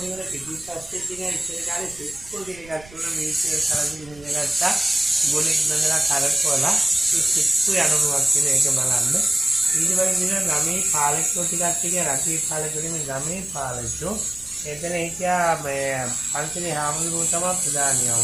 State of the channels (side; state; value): right; noise; rumble, 21 dB below the sound